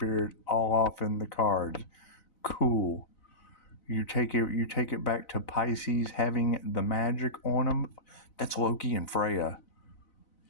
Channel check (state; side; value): late; right; 4.0 ms